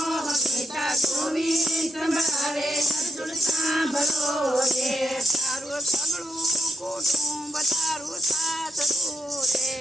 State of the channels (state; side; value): normal; both; correlation 0.81